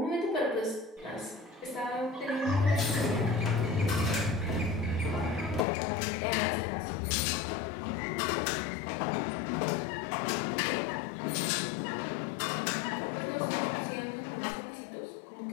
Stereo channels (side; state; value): right; drops out; at 5.7 s